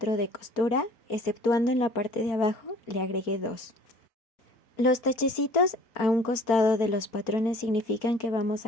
de costura, exceptuando en la parte de abajo le agregué 2. Los tachecitos a un costado de los patrones significan que vamos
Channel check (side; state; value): right; late; 4.5 ms